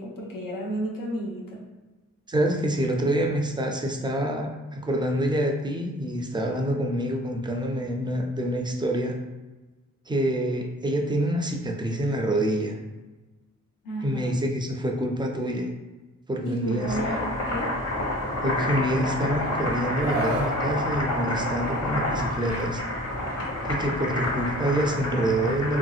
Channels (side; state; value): both; normal; correlation 0.51